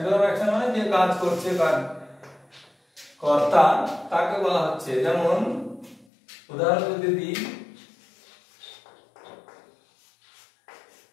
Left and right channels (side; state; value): right; drops out; at 6.1 s